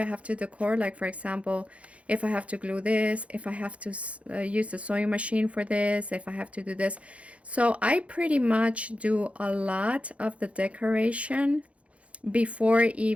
have to decor. Like, for example, if I have to glue this, if I have to use the sewing machine for this, if I have to do this. So I pretty much do a lot of the decoration before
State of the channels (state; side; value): late; left; 0.063 ms